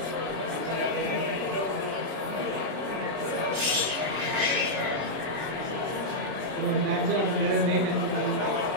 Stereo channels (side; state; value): left; late; 33 ms